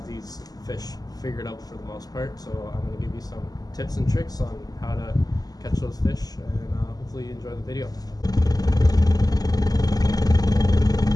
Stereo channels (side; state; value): right; late; 0.18 ms